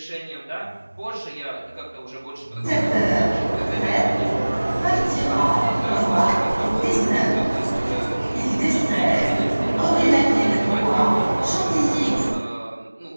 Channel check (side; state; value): both; inverted; correlation -1.00